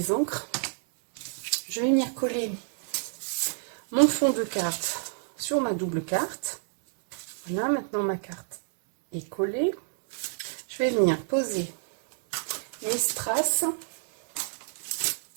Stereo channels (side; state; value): left; silent; 59 dB below the other